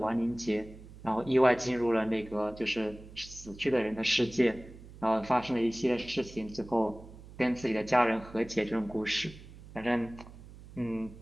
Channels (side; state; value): right; noise; hum, 18 dB below the sound